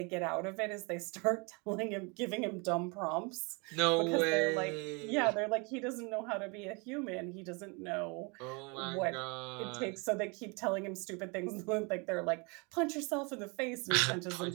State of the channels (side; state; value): left; quieter; 30.7 dB